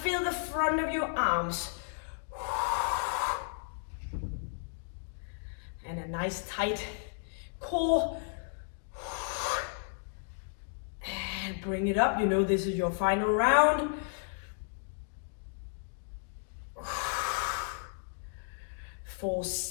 the front of your arms. And a nice tight core. And bring it up. You know this is your final round. 4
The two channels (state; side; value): silent; right; digital silence